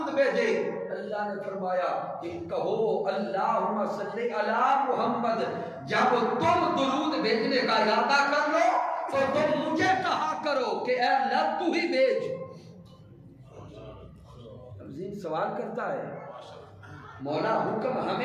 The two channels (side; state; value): both; identical; correlation 1.00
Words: بھیجے، اللہ نے فرمایا کہ کہو اللہم صلی علی محمد۔ جب تم درود بھیجنے کا ارادہ کر لو تو تم مجھے کہا کرو کہ اے اللہ تو ہی بھیج۔ اب ذہن سوال کرتا ہے، مولا حکم